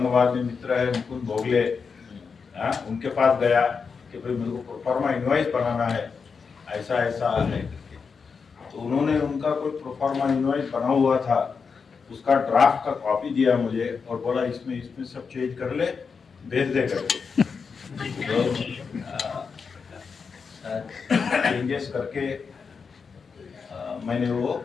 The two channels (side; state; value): right; quieter; 5.5 dB